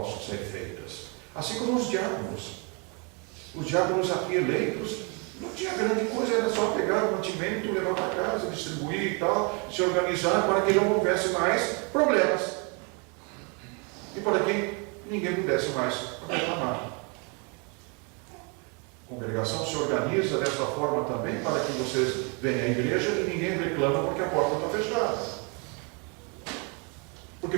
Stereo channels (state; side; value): quieter; left; 34.1 dB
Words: ser feitas. Assim como os diáconos. Os diáconos aqui eleitos, não tinha grande coisa, era só pegar o mantimento, levar para casa, distribuir e tal, se organizar para que não houvesse mais problemas. E para que ninguém pudesse mais reclamar. A congregação se organiza dessa forma também para que vocês venham à igreja e ninguém reclama porque a porta está fechada. Porque